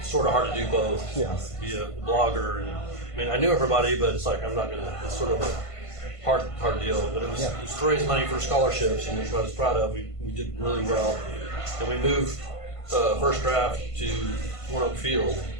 sort of hard to do both. Yeah. Be a blogger, and I mean I knew everybody, but it's like I'm not gonna. It's sort of a hard deal. But it was to raise money for scholarships, and which I was proud of. We did really well, and we moved First Draft to One Oak Field,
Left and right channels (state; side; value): late; right; 1.5 ms